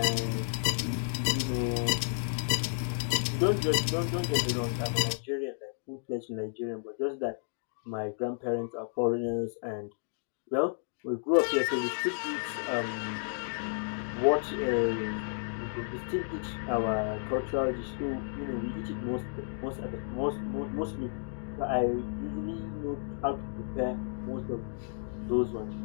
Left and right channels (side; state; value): right; silent; digital silence